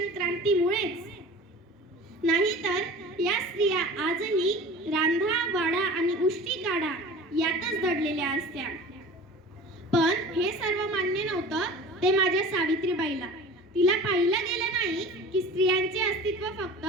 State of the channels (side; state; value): both; normal; correlation 0.38